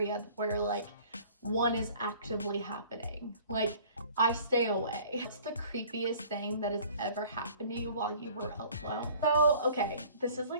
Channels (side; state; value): both; inverted; correlation -0.50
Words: where like one is actively happening. Like, I stay away. It's the creepiest thing that has ever happened to you while you were alone. So, okay, this is